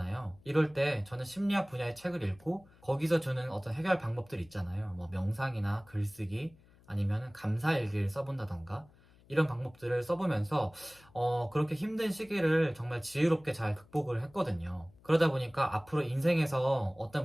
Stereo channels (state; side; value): noise; left; hum, 27 dB below the sound